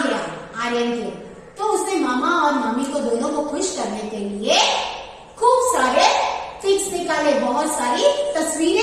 आर्यन के, तो उसने मामा और मामी को दोनों को खुश करने के लिए खूब सारे पिक्स निकाले, बहुत सारी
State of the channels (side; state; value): both; identical; correlation 1.00